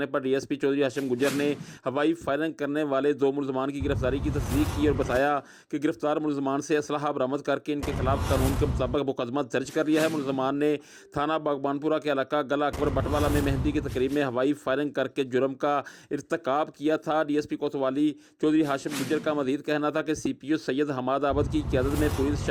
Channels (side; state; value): both; identical; correlation 1.00